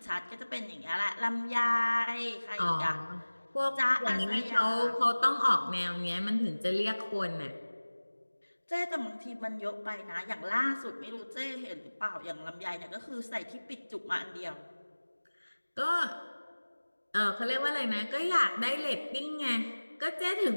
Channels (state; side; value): inverted; both; correlation -1.00